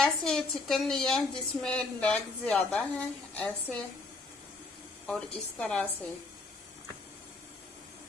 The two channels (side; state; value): right; quieter; 3.4 dB